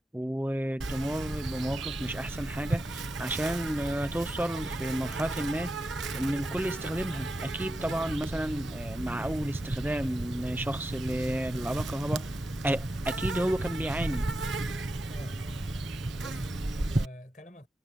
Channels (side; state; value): both; normal; correlation 0.88